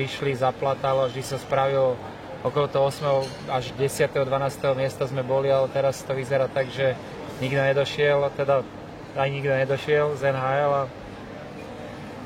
zaplatalo, vždy sa spravilo okolo toho 8. až 10. 12. miesta sme boli, ale teraz to vyzerá tak, že nikto nedošiel, teda aj nikto nedošiel z NHL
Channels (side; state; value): both; identical; correlation 1.00